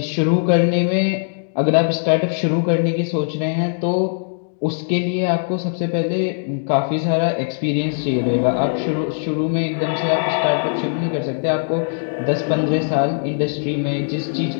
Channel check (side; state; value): right; silent; digital silence